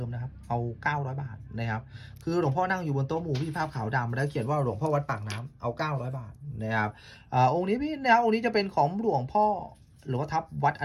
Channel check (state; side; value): identical; both; correlation 1.00